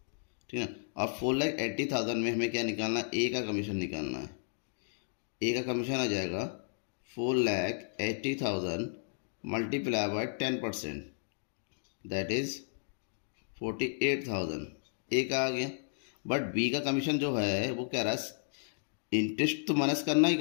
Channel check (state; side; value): silent; right; digital silence